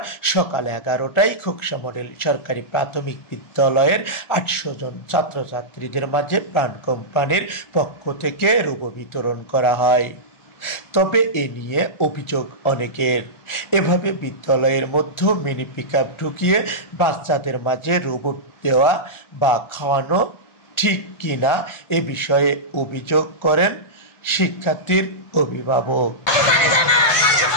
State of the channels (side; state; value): right; late; 1.4 ms